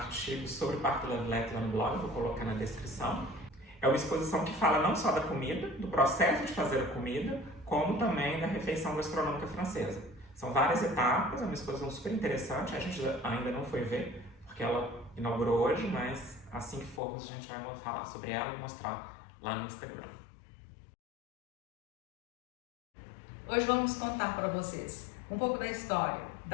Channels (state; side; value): drops out; right; at 17.0 s